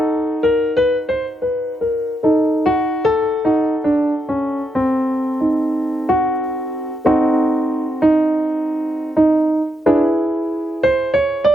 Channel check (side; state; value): both; normal; correlation 0.82